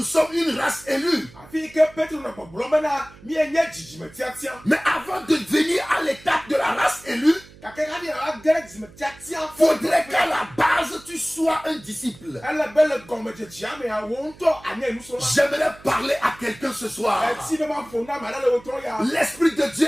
sommes une race élue. Mais avant de venir à l'étape de la race élue, Faudrait qu'à la base, tu sois un disciple. J'aimerais parler à quelqu'un ce soir. L'Esprit de Dieu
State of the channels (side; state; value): right; noise; hum, 22 dB below the sound